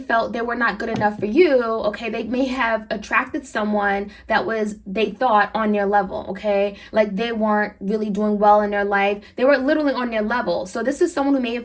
they were not good enough for you, okay, they may have attracted someone that was, they thought, on their level, okay, like they weren't really doing well in their life. They were literally on their level. So this is someone who may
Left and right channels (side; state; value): both; identical; correlation 1.00